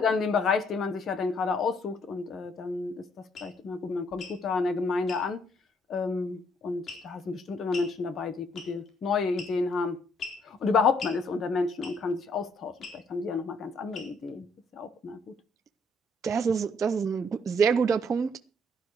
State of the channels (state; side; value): normal; both; correlation 0.68